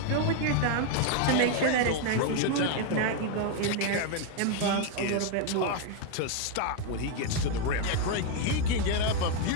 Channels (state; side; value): different; both; correlation 0.01